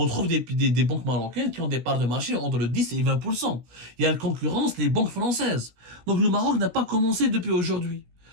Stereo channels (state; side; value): late; left; 16 ms